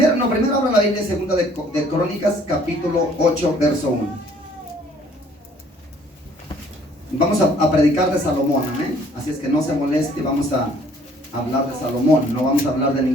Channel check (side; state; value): both; normal; correlation 0.59